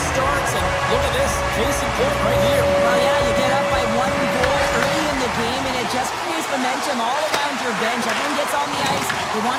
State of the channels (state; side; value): identical; both; correlation 1.00